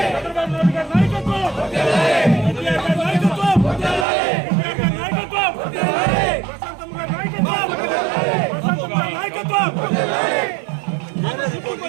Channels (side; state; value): left; drops out; at 4.0 s